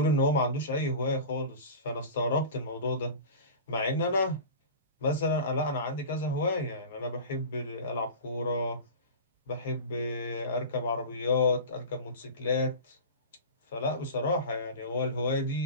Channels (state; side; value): inverted; both; correlation -0.33